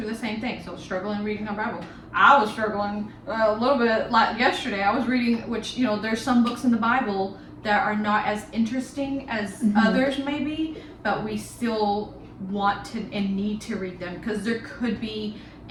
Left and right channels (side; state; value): both; identical; correlation 1.00